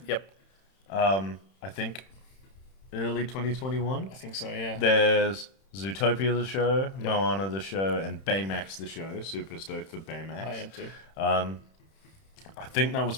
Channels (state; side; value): late; right; 31 ms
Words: Yep. I think early 2021. I think so, yeah. There's Zootopia the show, Moana the show, and Baymax the show. Super stoked for Baymax. I am too. I think that